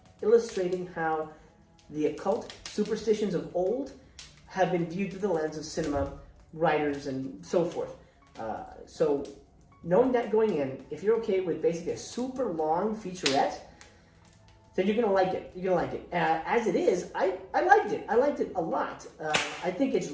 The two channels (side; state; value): both; identical; correlation 1.00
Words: illustrating how the occult superstitions of old have been viewed through the lens of cinema, writers, and so forth. So knowing that going in, if you're okay with basically a super long featurette, then you're going to like it. As it is, I liked it. I liked it a lot. I think it's